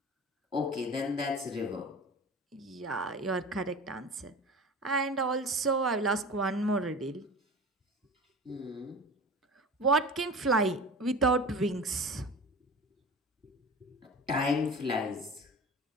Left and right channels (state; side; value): normal; both; correlation 0.35